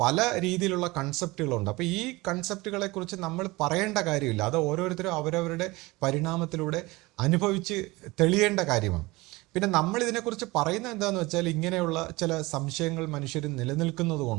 പല രീതിയിലുള്ള കൺസെപ്റ്റുകളുണ്ട്. അപ്പോൾ ഈ കൺസെപ്റ്റുകളെക്കുറിച്ച് നമ്മൾ പറയേണ്ട കാര്യമില്ല, അത് ഓരോരുത്തരും അവരവരുടെ പരിണാമത്തിലൂടെ അനുഭവിച്ച് തെളിയേണ്ട കാര്യമാണ്. പിന്നെ നമ്മൾ ഇതിനെക്കുറിച്ച് പറയുന്നത് എന്താണെന്ന് വെച്ചാൽ, ഇങ്ങനെയുള്ള ചില സംശയങ്ങൾ മനുഷ്യർ നിലനിൽക്കുന്നത്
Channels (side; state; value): left; quieter; 21.9 dB